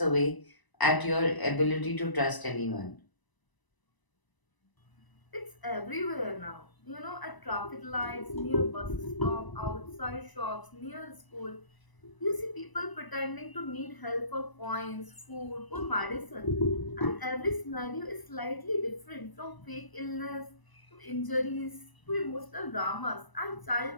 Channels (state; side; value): late; right; 1.0 ms